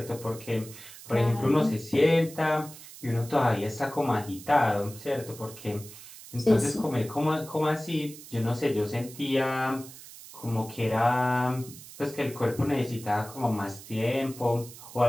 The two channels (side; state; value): right; noise; hiss, 16 dB below the sound